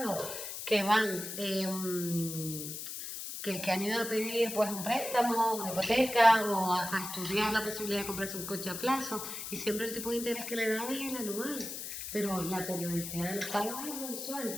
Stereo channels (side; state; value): left; noise; hiss, 7 dB below the sound